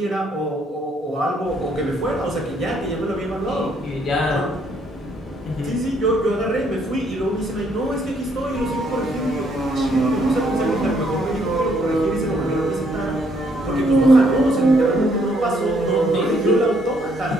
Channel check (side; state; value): both; normal; correlation 0.69